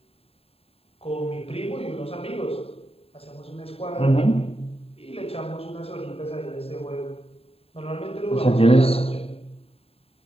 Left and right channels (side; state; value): right; late; 0.28 ms